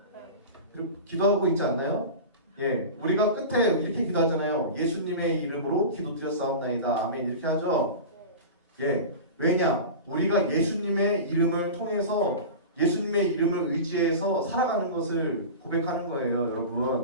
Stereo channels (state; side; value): inverted; both; correlation -0.30